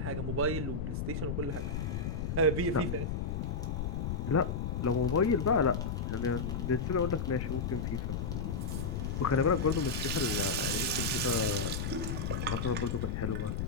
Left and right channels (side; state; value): left; noise; rumble, 1 dB below the sound